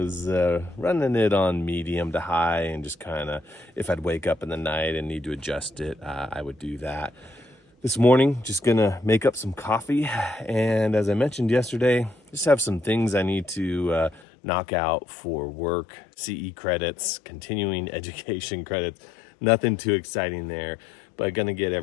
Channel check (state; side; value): drops out; right; at 14.2 s